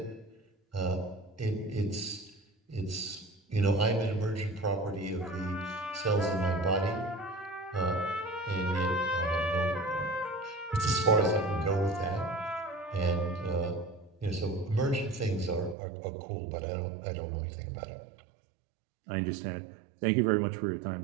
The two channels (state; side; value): drops out; left; at 15.8 s